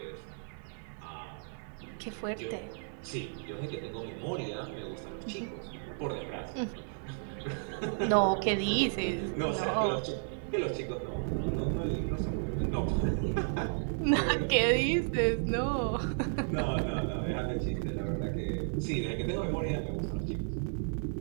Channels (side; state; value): left; silent; digital silence